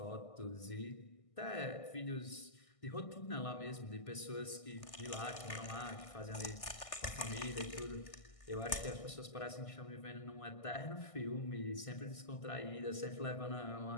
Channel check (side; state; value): right; late; 1.6 ms